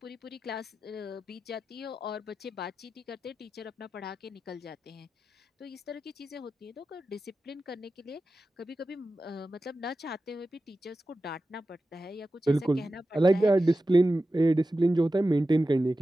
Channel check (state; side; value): normal; both; correlation 0.93